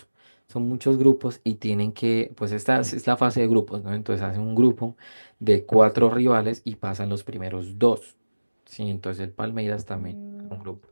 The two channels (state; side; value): inverted; both; correlation -1.00